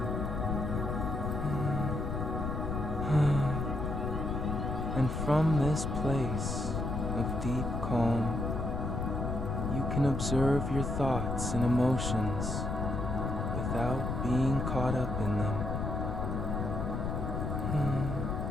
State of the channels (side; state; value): left; noise; rumble, 2 dB below the sound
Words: And from this place of deep calm, you can observe your thoughts and emotions without being caught up in them.